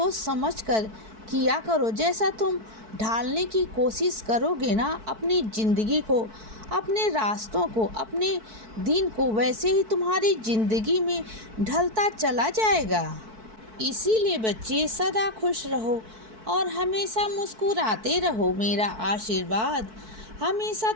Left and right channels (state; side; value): late; left; 4.6 ms